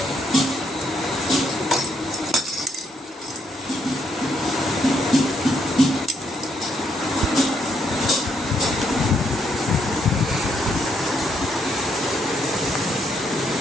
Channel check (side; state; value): both; normal; correlation 0.74